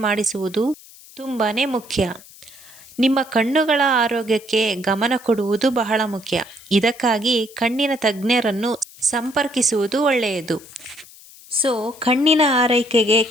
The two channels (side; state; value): left; noise; hiss, 21 dB below the sound